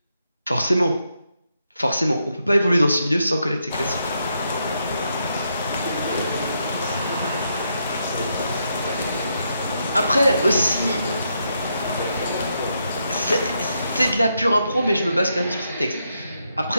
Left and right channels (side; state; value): both; inverted; correlation -0.80